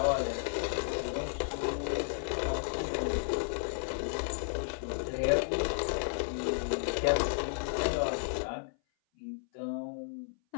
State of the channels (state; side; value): silent; right; 56 dB below the other